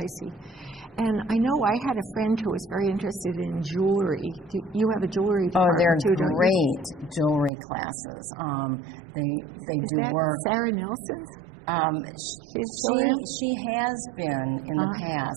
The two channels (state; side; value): drops out; left; at 7.5 s